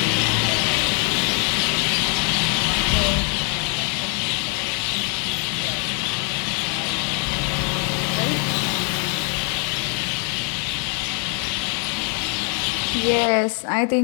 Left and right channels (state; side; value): quieter; right; 39.5 dB